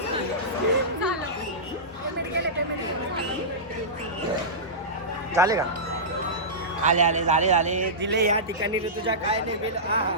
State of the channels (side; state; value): both; normal; correlation -0.17